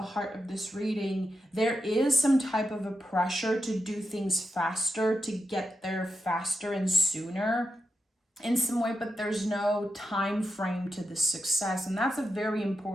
heart of this reading, there is some type of a pressure to do things faster, to get there faster and sooner in some way, but there's no time frame to the success. And that's a very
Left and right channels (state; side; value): normal; both; correlation 0.87